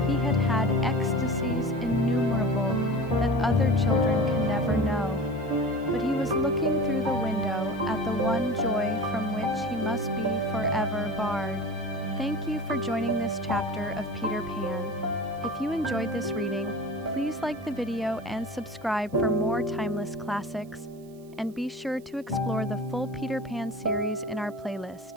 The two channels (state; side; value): noise; right; hiss, 28 dB below the sound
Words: He had had ecstasies innumerable that other children can never know, but he was looking through the window at the one joy from which he must be forever barred. Thank you for joining this chapter of Peter Pan. If you enjoyed this reading, please like the video and subscribe for more timeless classics, and be sure to explore the full Peter Pan series in our